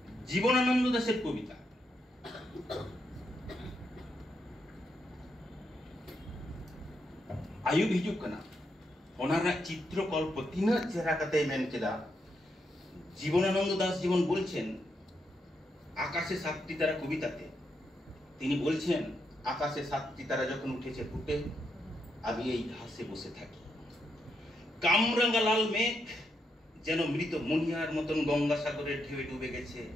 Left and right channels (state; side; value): normal; both; correlation 0.81